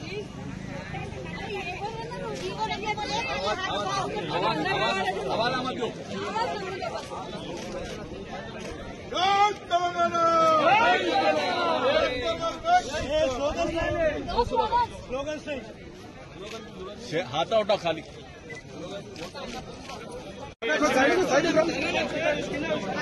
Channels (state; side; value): identical; both; correlation 1.00